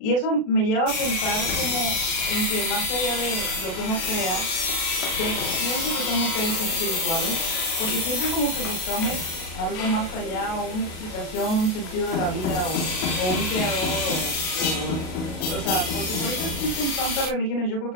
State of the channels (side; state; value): right; late; 38 ms